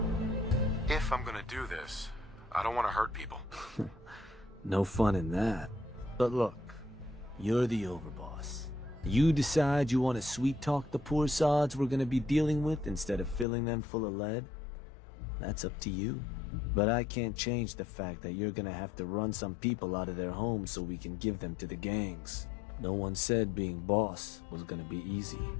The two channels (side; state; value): right; drops out; at 13.5 s